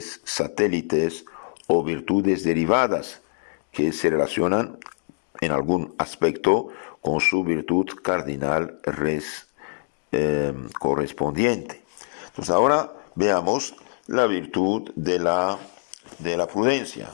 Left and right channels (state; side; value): silent; right; digital silence